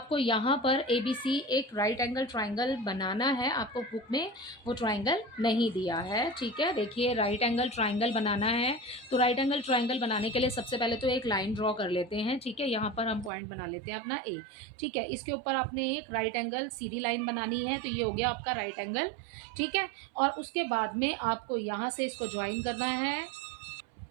यहाँ पर ए B सी एक राइट एंगल ट्राइंगल बनाना है। आपको बुक में वो ट्राइंगल नहीं दिया है। ठीक है, देखिए राइट एंगल ट्राइंगल बनाना है तो राइट एंगल ट्राइंगल बनाने के लिए सबसे पहले तो एक लाइन ड्रॉ कर लेते हैं। ठीक है, यहाँ पर हम पॉइंट बना लेते हैं अपना ए। ठीक है, इसके ऊपर आपने एक राइट एंगल सीधी लाइन बनानी है, तो ये हो गया आपका राइट एंगल। ठीक है, और उसके बाद में आपको यहाँ से इसको ज्वाइन करना है।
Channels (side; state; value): left; drops out; at 13.3 s